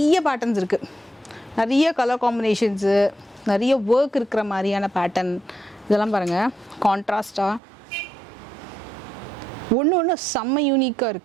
பேட்டர்ன்ஸ் இருக்குது. நிறைய கலர் காம்பினேஷன்ஸு, நிறைய ஒர்க் இருக்கிற மாதிரியான பேட்டர்ன் இதெல்லாம் பாருங்கள். கான்ட்ராஸ்டாக ஒன்று செம்ம யூனிக்காக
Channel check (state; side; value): drops out; left; at 7.6 s